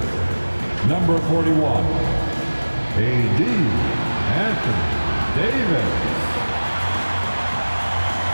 number 41, A.D. Anthony Davis.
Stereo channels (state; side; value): inverted; both; correlation -1.00